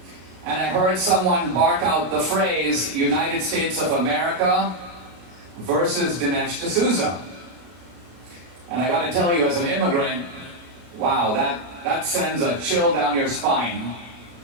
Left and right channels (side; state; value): left; late; 33 ms